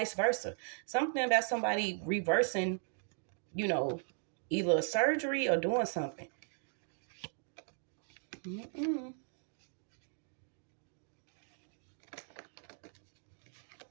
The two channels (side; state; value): left; silent; 53 dB below the other